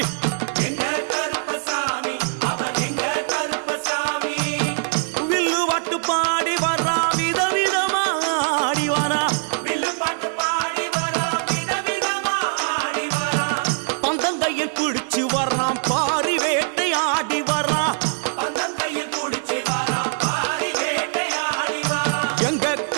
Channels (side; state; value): left; silent; digital silence